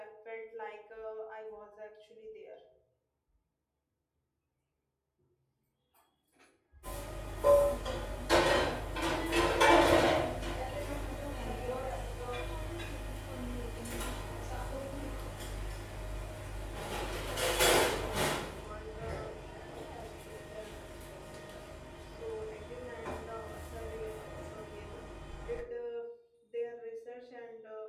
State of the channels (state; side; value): identical; both; correlation 1.00